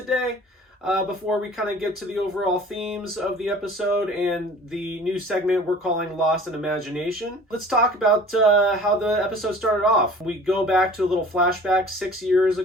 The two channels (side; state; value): both; normal; correlation 0.46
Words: before we kind of get to the overall themes of the episode and the new segment we're calling Lost in Imagination. Let's talk about how the episode started off. We go back to a little flashback 6 years